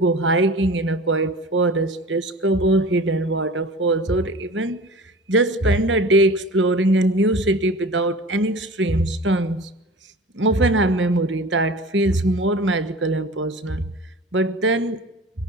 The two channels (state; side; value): normal; both; correlation 0.38